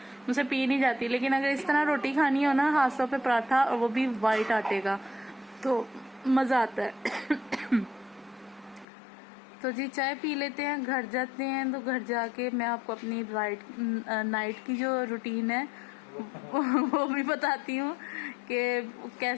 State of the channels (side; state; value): right; drops out; at 8.8 s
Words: मुझसे पी नहीं जाती, लेकिन अगर इस तरह रोटी खानी हो ना हाथों पे पराठा और वो भी वाइट आटे का, तो मजा आता है। तो जी चाय पी लेते हैं, घर जाते हैं। तो घर जाके मैं आपको अपनी नाइट की जो रूटीन है वो भी बताती हूँ कि